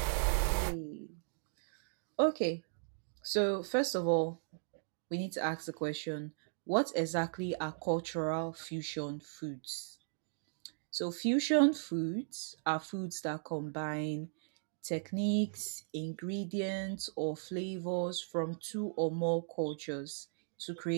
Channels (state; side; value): silent; left; digital silence